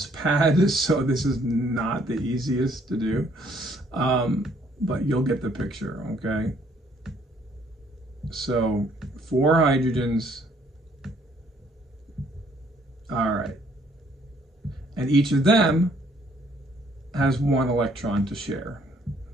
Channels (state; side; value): normal; both; correlation 0.64